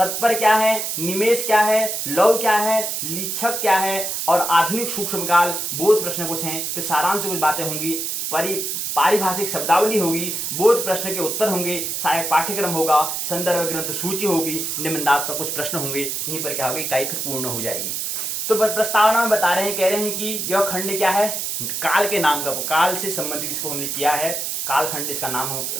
क्या है, निमेष क्या है, लव क्या है, लीक्षक क्या है, और आधुनिक सूक्ष्म काल। बोध प्रश्न कुछ हैं, फिर सारांश कुछ बातें होंगी, पारिभाषिक शब्दावली होगी, बोध प्रश्न के उत्तर होंगे, सहायक पाठ्यक्रम होगा, संदर्भ ग्रंथ सूची होगी, निबंधात्मक कुछ प्रश्न होंगे। यहीं पर क्या होगी, इकाई फिर पूर्ण हो जाएगी। तो प्रस्तावना में बता रहे हैं, कह रहे हैं कि यह खंड क्या है, काल के नाम का, काल से संबंधित इसको हमने किया है, काल खंड इसका नाम,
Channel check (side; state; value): right; noise; hiss, 2 dB below the sound